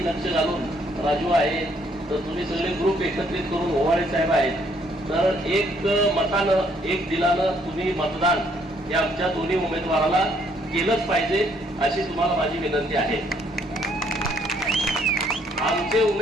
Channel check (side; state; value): both; normal; correlation 0.67